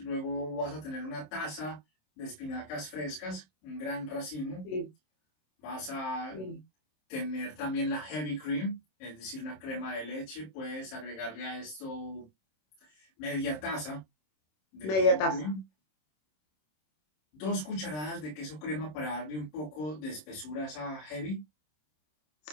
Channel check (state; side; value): late; right; 26 ms